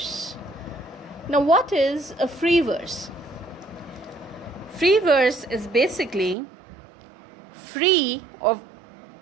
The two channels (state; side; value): drops out; left; at 6.4 s